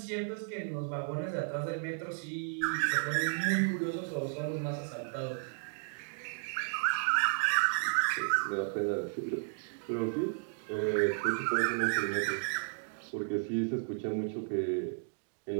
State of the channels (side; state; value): left; silent; digital silence